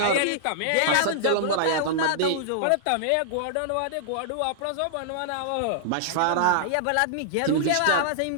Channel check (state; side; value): different; both; correlation -0.01